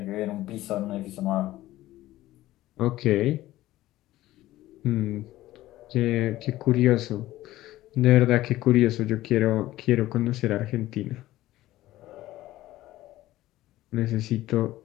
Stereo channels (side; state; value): right; quieter; 15.8 dB